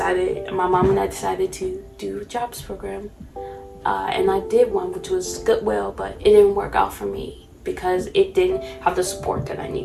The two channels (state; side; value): identical; both; correlation 1.00